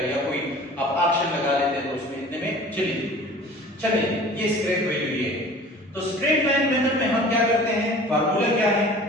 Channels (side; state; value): both; normal; correlation 0.44